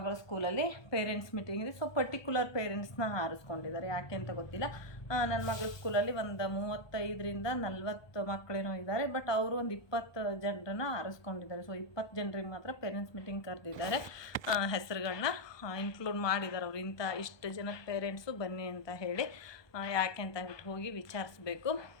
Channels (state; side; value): late; right; 1.2 ms